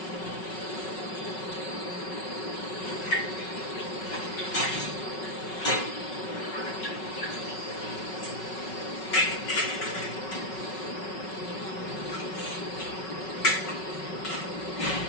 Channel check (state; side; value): late; right; 5.4 ms